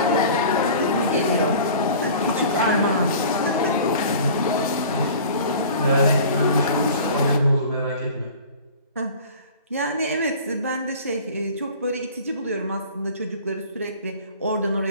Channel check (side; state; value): both; inverted; correlation -0.43